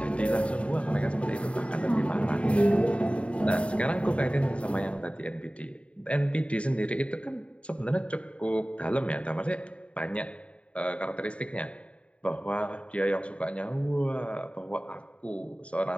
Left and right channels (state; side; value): late; right; 0.061 ms